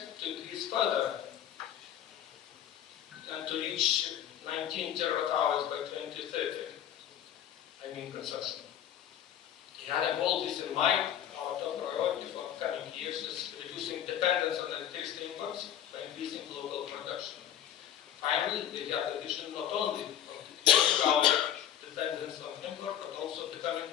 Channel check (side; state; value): right; quieter; 10.5 dB